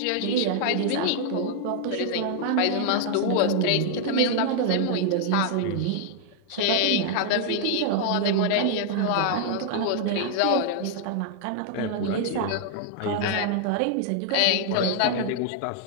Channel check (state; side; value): different; both; correlation 0.00